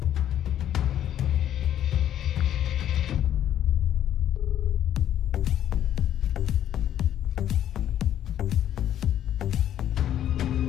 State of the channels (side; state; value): right; quieter; 11.0 dB